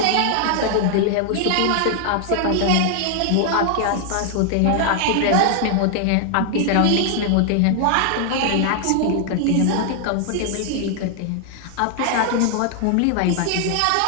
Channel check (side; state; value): both; different; correlation 0.00